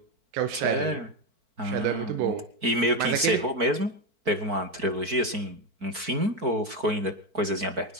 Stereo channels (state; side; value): late; left; 4.5 ms